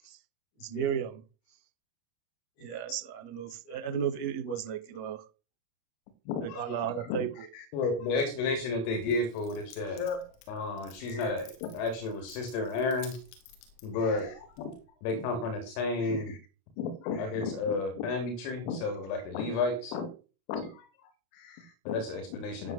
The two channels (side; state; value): right; late; 29 ms